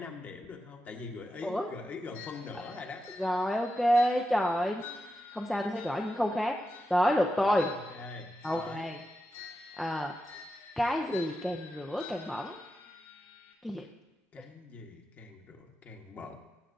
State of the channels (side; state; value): both; normal; correlation 0.89